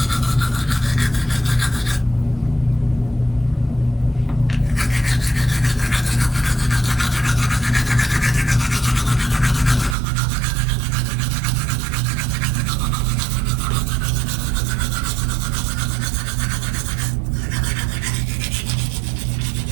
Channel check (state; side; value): drops out; left; at 10.0 s